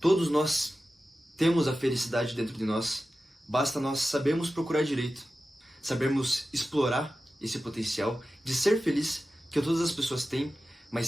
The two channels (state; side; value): normal; both; correlation 0.94